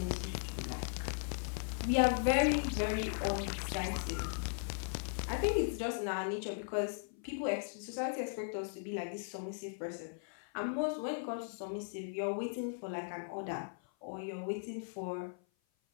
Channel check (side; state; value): right; silent; 53 dB below the other